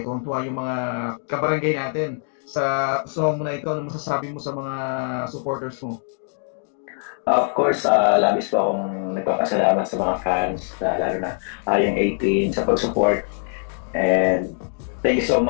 yung mga kabarangay natin sa song na ito. Ano masasabi mo sa mga supporters mo? Of course, labis po akong nagpapasalamat sa mga fans, lalo na yung 18 sa pag-support. And thank you so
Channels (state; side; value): silent; right; 56 dB below the other